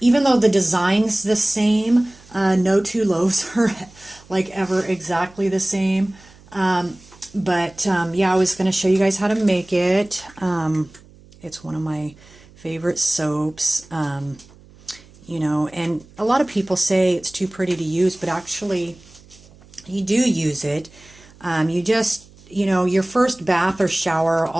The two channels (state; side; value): noise; right; hum, 25 dB below the sound